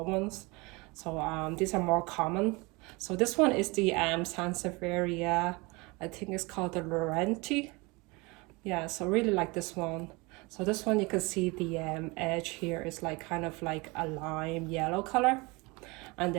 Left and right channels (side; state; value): left; quieter; 25.9 dB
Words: ones. So these are more common. So this one is the Sansevieria. I think it's called the Laurenti. Yeah, so really like this one. So this one you can see the edge here is like kind of like a lime yellow color. And